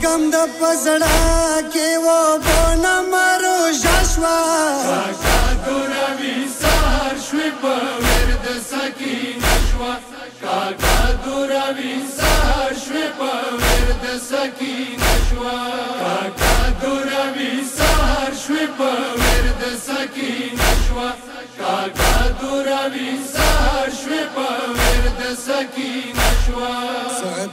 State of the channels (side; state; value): both; identical; correlation 1.00